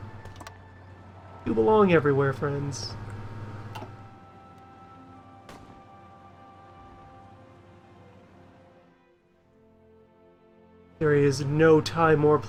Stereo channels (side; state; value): both; identical; correlation 1.00